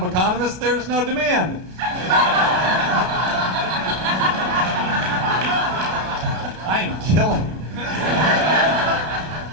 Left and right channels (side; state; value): left; late; 32 ms